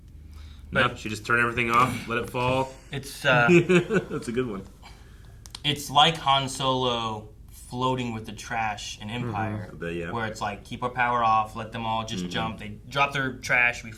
she just turned everything off, let it fall. It's that's a good one. It's like Han Solo floating with the trash in Empire, Yeah. where it's like keep our power off, let them all just jump. They drop their trash, we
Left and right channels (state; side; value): identical; both; correlation 1.00